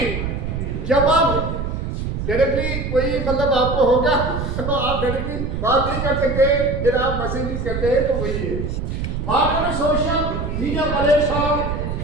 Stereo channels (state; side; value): noise; right; rumble, 3 dB below the sound